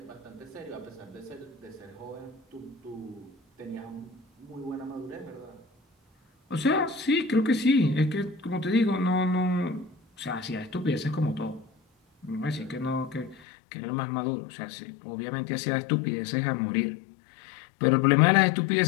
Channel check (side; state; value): right; drops out; at 13.4 s